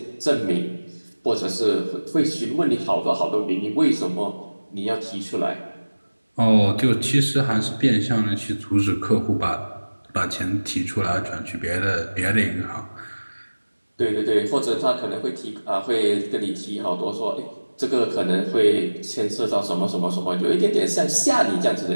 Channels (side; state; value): both; inverted; correlation -1.00